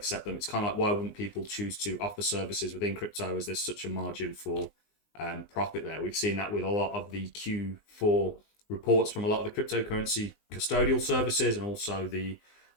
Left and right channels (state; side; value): late; right; 19 ms